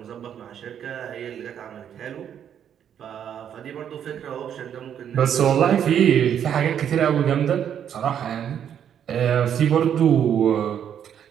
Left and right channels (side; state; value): left; quieter; 9.1 dB